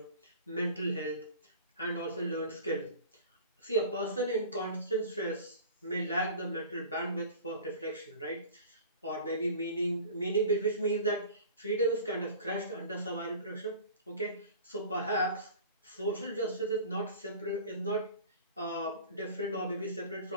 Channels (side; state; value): both; inverted; correlation -0.41